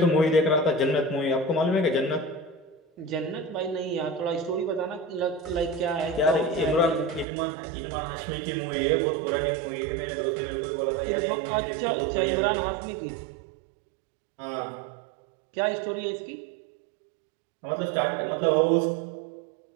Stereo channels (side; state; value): left; drops out; at 7.2 s